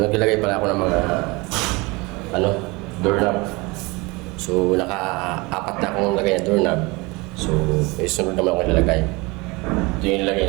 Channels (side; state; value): left; quieter; 25.1 dB